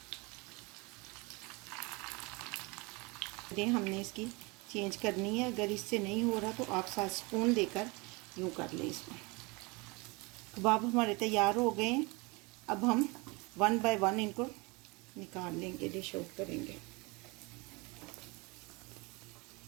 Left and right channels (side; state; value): left; quieter; 26.9 dB